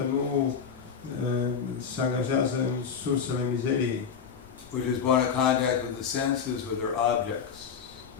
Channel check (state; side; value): quieter; right; 6.8 dB